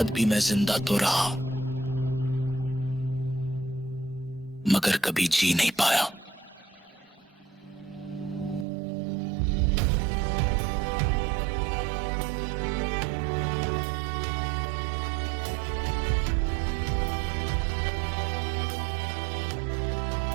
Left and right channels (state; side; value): drops out; left; at 8.7 s